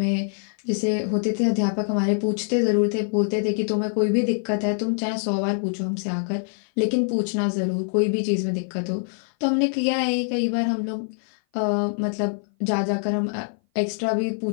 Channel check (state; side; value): silent; right; 57 dB below the other